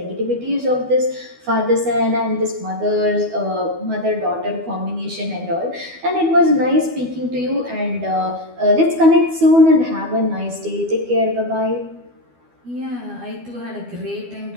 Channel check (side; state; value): left; late; 12 ms